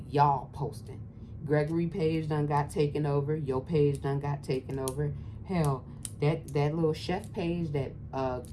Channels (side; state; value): both; identical; correlation 1.00